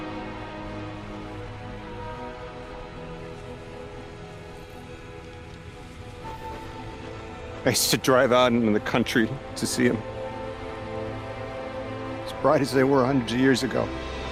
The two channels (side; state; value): both; identical; correlation 1.00